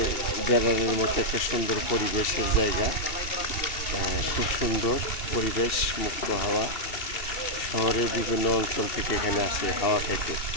বেড়ানোর মতো একটা সুন্দর পরিবেশের জায়গা। খুব সুন্দর পরিবেশ, মুক্ত হাওয়া। শহরের বিভিন্ন অঞ্চল থেকে এখানে আসে হাওয়া খাইতে।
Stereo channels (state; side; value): late; right; 2.7 ms